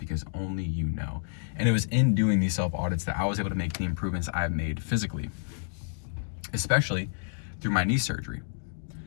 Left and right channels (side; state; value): right; silent; digital silence